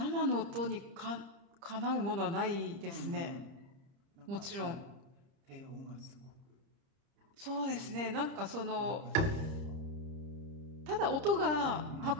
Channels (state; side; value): late; left; 30 ms